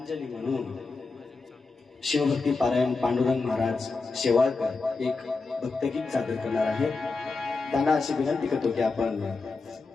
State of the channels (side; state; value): right; quieter; 4.0 dB